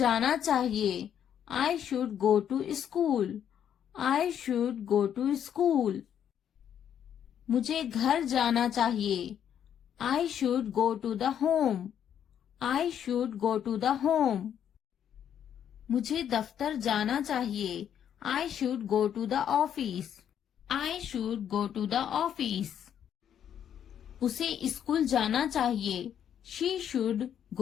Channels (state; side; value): quieter; right; 9.3 dB